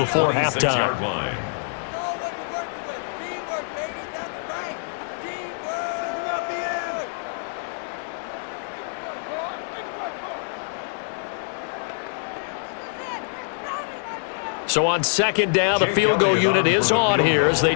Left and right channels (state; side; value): silent; right; digital silence